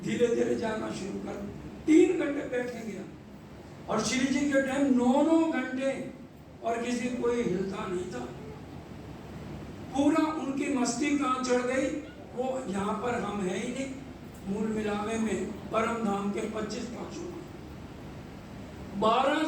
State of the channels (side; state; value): both; identical; correlation 1.00